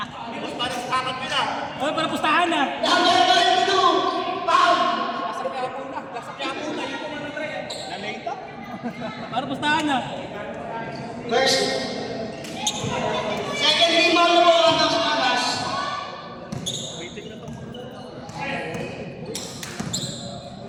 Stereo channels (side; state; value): both; identical; correlation 1.00